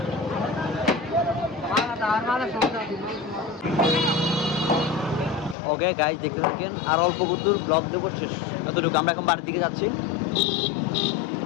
ওকে গাইজ দেখতে থাকেন আর অল্প দূর ব্লগ দেবো শেষ এতটুকু আমরা এখন বাড়ির দিকে যাচ্ছি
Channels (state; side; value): drops out; right; at 5.6 s